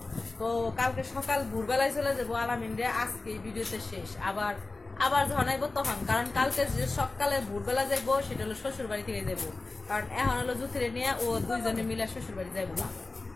তো কালকে সকাল ভোরবেলায় চলে যাবো আলামিন রে। আজকে ভিডিওতে শেষ, আবার আবার যখন আইবো তখন, কারণ কালকে যে সকালে ভোরবেলা যাবো সেটা হলো শ্বশুর বাড়ি থেকে যাবো। কারণ এখন হলো জুথিরে নিয়ে ও দুইজনে মিলে শ্বশুর বাড়ি যাইবো না,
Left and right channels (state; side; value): quieter; right; 3.4 dB